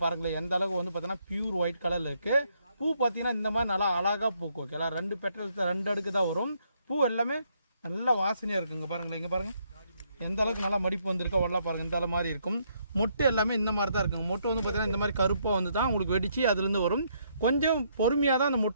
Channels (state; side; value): inverted; both; correlation -0.73